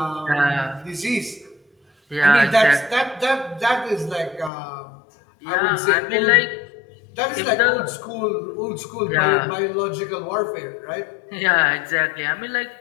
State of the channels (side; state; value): right; drops out; at 4.5 s